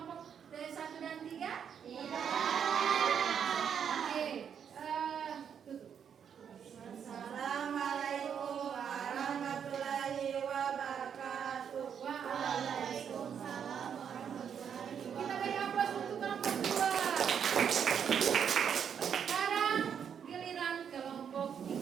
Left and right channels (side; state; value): left; quieter; 7.9 dB